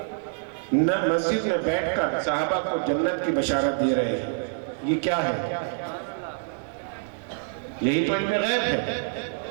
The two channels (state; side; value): silent; left; digital silence